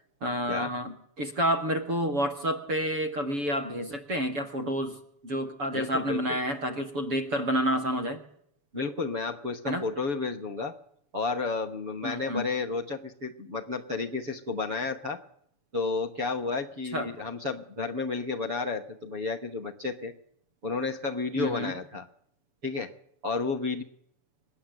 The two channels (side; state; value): left; late; 7.0 ms